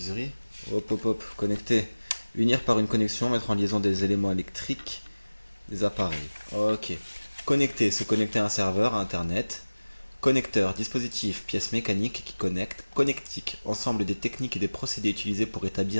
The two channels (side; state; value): both; inverted; correlation -1.00